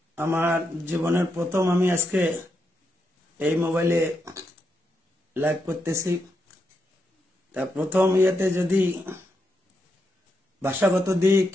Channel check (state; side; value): normal; both; correlation 0.83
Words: আমার জীবনের প্রথম আমি আজকে এই মোবাইলে লাইভ করতেছি। তা প্রথম ইয়েতে যদি ভাষাগত দিক